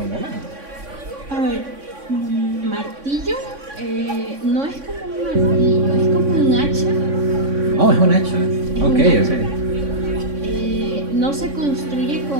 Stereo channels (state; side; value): late; left; 3.6 ms